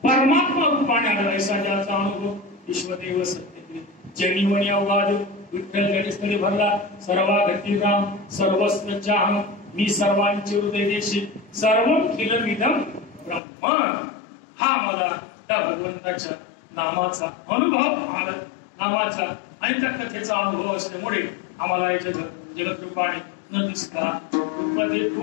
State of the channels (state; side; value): drops out; right; at 13.4 s